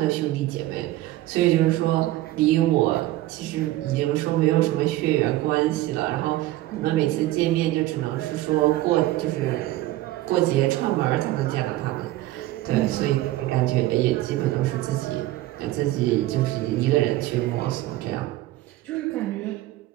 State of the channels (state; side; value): quieter; left; 16.2 dB